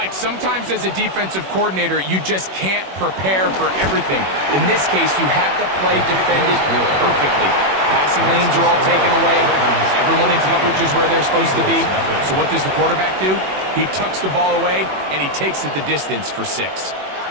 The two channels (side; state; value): left; late; 21 ms